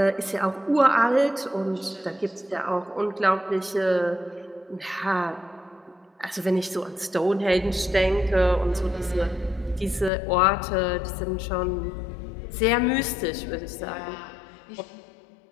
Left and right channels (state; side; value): drops out; right; at 10.1 s